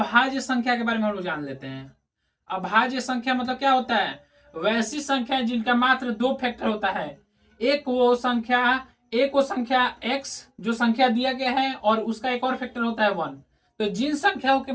संख्या के बारे में हम लोग जान लेते हैं। अभाज्य संख्या मतलब क्या होता है? वैसी संख्या जिनका मात्र दो फैक्टर होता है। एक वो संख्या x जो संख्या दिया गया है और उसका एक और फैक्टर होता है 1। तो जिन संख्याओं के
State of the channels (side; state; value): both; identical; correlation 1.00